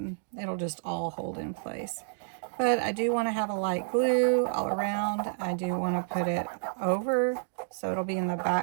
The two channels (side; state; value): left; silent; digital silence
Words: it'll just all hold in place. But I do want to have a light glue all around. I do want to put it over so it'll be in the